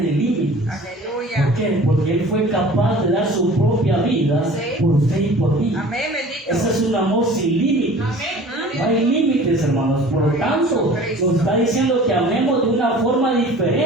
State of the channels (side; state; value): both; normal; correlation 0.45